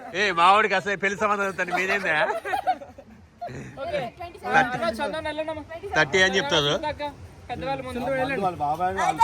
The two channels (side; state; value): both; identical; correlation 1.00